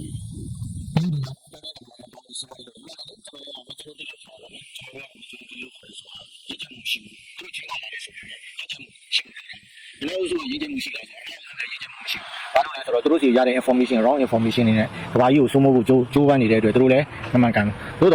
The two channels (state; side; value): identical; both; correlation 1.00